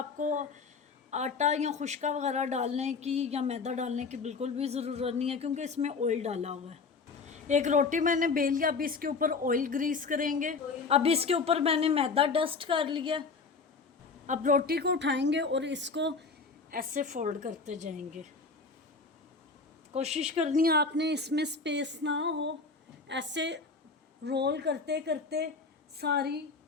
आटा या खुश्का वगैरह डालने की या मैदा डालने की बिल्कुल भी ज़रूरत नहीं है, क्योंकि इसमें ऑयल डाला हुआ है। एक रोटी मैंने बेल लिया। अब इसके ऊपर ऑयल ग्रीस करेंगे। अब इसके ऊपर मैंने मैदा डस्ट कर लिया। अब रोटी को उठाएंगे और इसको ऐसे फोल्ड करते जाएंगे। कोशिश करनी है आपने इसमें स्पेस ना हो। ऐसे रोल करते करते सारी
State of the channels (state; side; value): quieter; right; 4.6 dB